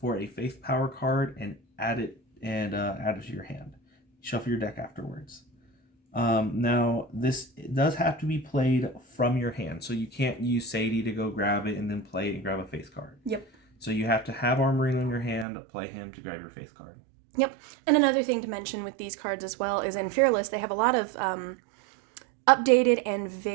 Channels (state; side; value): drops out; left; at 15.5 s